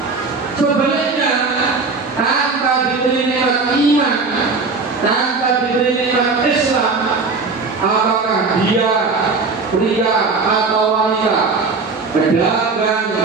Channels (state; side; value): quieter; left; 4.2 dB